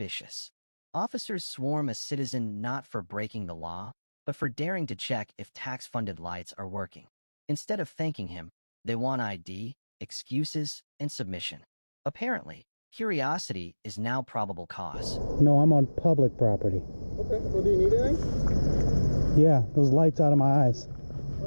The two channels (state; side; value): inverted; both; correlation -1.00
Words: Officers swarm a citizen not for breaking the law, but for daring to check if tax-funded lights are working. Instead of thanking him, they want ID, excuses, and submission. Apparently, curiosity is now probable cause. No, I'm on public property. Okay, well, do you need anything? Yeah, those lights out of my eyes.